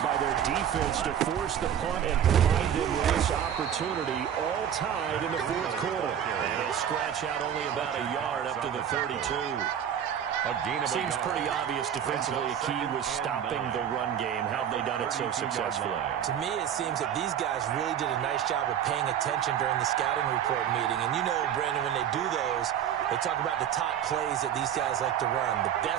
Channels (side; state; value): left; quieter; 9.3 dB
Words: by their defense to force the punt and provide them with this opportunity, all tied in the 4th quarter. And he'll scratch out only about a yard up to the 32. Seems pretty obvious defensively a key was stopping the run game. How have they done it so successfully? To me, it seems that these guys really did a nice job of paying attention during the scouting report meeting. And you know, Brandon, when they do those, they talk about the top plays that these guys like to run. The